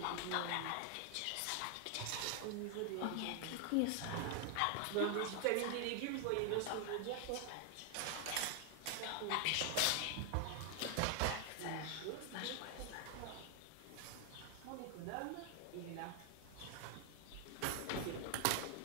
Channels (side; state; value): both; different; correlation 0.00